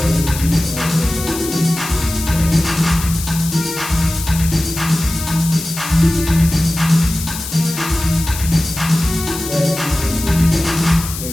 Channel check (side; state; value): left; noise; hiss, 8 dB below the sound